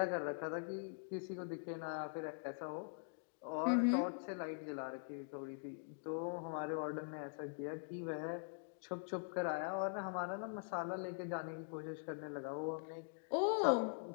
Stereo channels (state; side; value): silent; right; digital silence